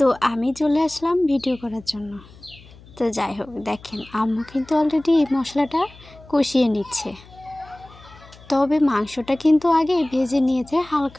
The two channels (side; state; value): left; noise; hum, 22 dB below the sound